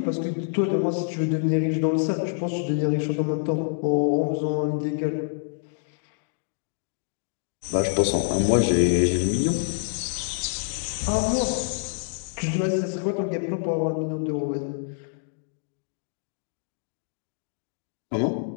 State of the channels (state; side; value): silent; right; digital silence